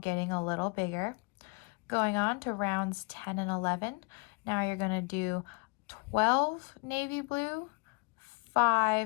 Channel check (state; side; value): quieter; right; 30.9 dB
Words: getting a little bigger. Going on to rounds 10 and 11. Now you're going to do 12 navy blue,